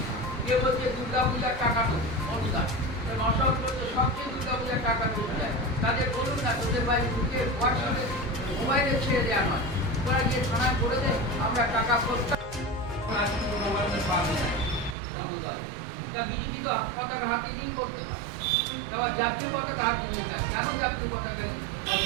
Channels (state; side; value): drops out; left; at 15.0 s